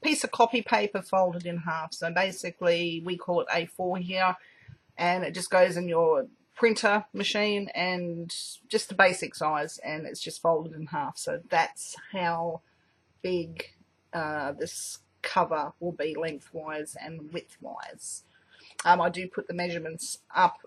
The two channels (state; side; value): identical; both; correlation 1.00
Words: piece of copy paper folded in half. So basically we call it A4 here, and it just goes in your printer machine, and just the basic size, and it's just folded in half. So that's how big this cover will be lengthwise and widthwise. I do put the measurements up